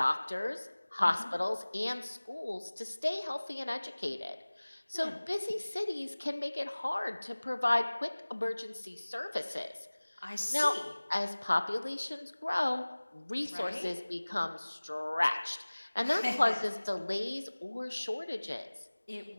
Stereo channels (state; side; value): inverted; both; correlation -1.00